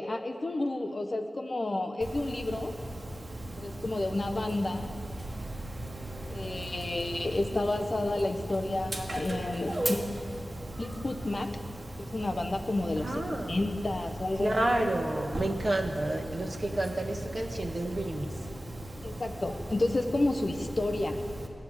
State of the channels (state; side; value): normal; both; correlation 0.95